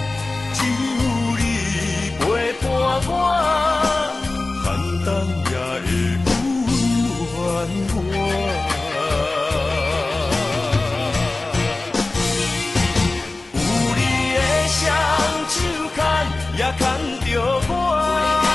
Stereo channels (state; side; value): quieter; right; 3.2 dB